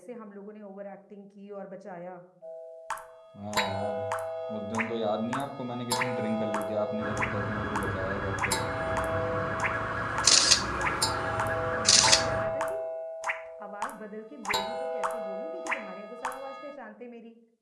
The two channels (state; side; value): identical; both; correlation 1.00